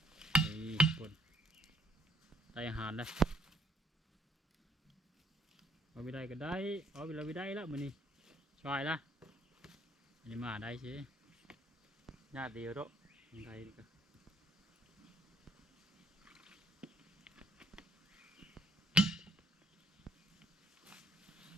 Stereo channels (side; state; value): both; normal; correlation 0.66